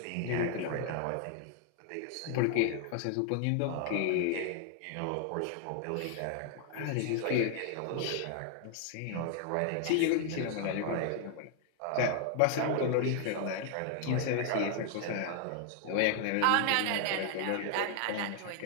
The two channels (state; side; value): different; both; correlation 0.00